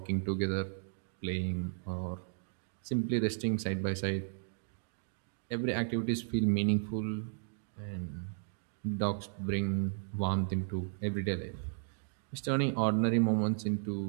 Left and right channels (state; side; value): silent; left; digital silence